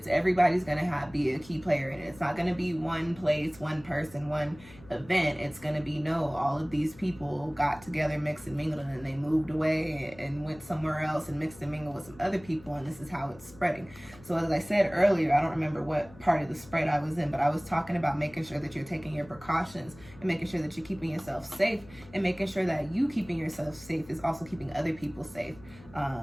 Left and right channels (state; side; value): noise; left; hum, 21 dB below the sound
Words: Everybody's going to be a key player in it. It's not going to be one place, one person, one event. It's going to be, no, all of these people got together, mixed and mingled, and then they moved away and went somewhere else and mixed and mingled with some other people, and this is how it's spreading. So as I said earlier, I don't remember what part of the spread I was in, but I was talking about making sure that you're taking your precautions and making sure that you're keeping yourself safe, and making sure that you keeping yourself safe is also keeping other people safe.